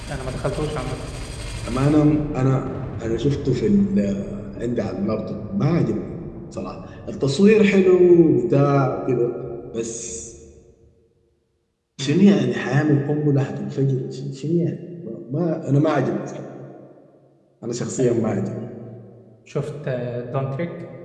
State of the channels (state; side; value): identical; both; correlation 1.00